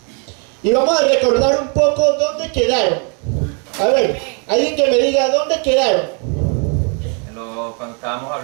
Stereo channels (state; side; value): quieter; left; 38.0 dB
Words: Y vamos a recordar un poco dónde quedaron. A ver, alguien que me diga dónde quedaron. Cuando estábamos